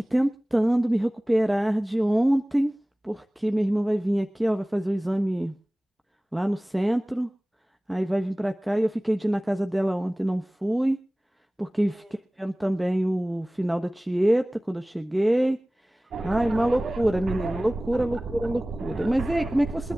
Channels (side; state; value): both; normal; correlation 0.98